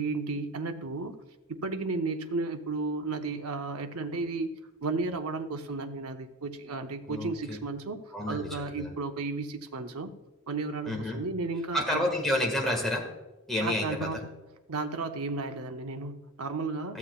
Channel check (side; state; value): both; normal; correlation 0.31